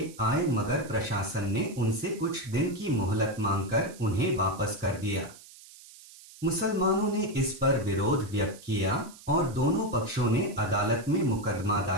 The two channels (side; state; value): right; noise; hiss, 20 dB below the sound